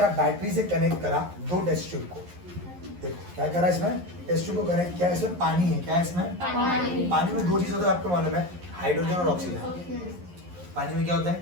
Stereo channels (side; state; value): left; late; 11 ms